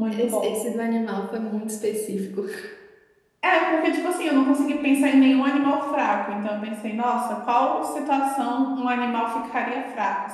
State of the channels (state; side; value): identical; both; correlation 1.00